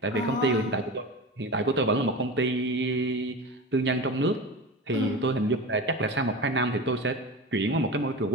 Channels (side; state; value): both; normal; correlation 0.28